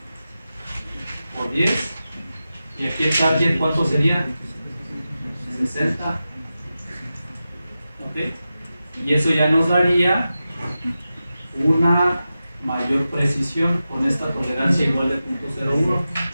por 10, y aquí el target ¿cuánto sería? 60. ¿Ok? Y eso ya nos daría una mayor precisión con esta tolerancia igual de 0.01.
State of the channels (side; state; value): both; inverted; correlation -0.93